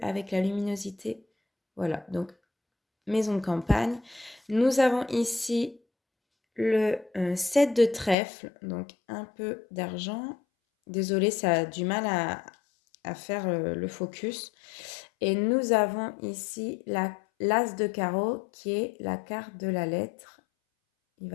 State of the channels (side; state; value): right; drops out; at 8.2 s